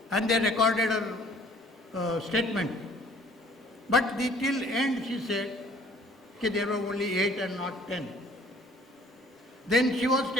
and they recorded her statement. But till end she said that there were only 8 and not 10. Then she was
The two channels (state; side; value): normal; both; correlation 0.55